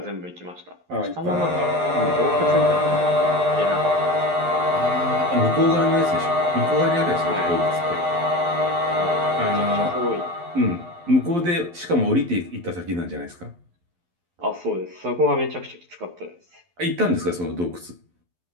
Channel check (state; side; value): late; left; 11 ms